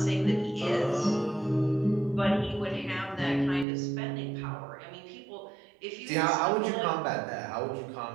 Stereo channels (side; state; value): left; drops out; at 3.7 s